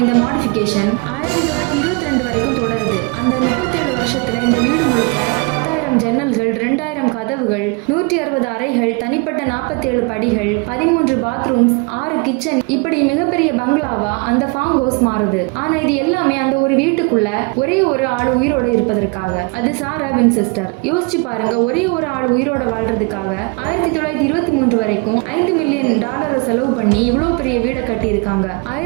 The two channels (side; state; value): left; quieter; 29.9 dB